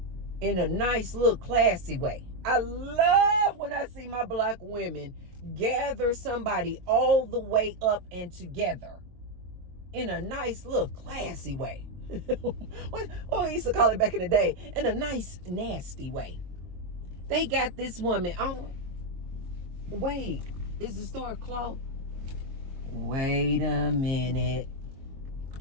in a nice little classy way. I love when I see my black women gather somebody all the way up and together in a nice little classy way. What I used to call it back in the day, in a nice nasty way. They got this woman. Oh, wait, is the store closed? Wait a minute.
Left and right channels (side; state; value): left; late; 22 ms